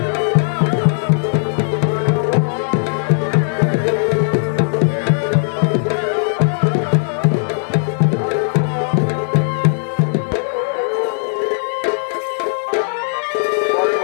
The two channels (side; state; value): right; silent; digital silence